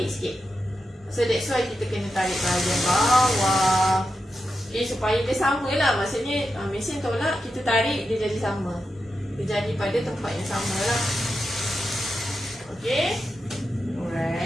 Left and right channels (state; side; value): normal; both; correlation 0.88